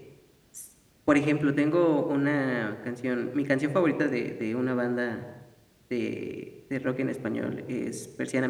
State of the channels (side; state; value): both; identical; correlation 1.00